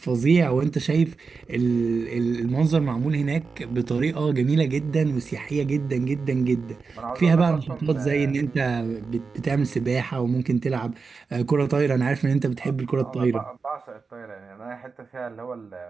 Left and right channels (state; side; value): quieter; left; 4.8 dB